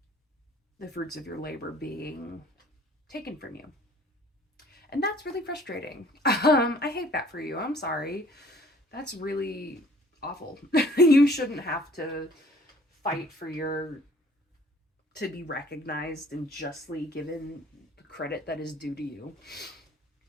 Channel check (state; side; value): normal; both; correlation 0.55